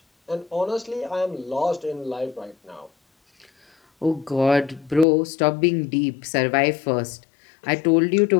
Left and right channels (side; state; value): right; drops out; at 5.1 s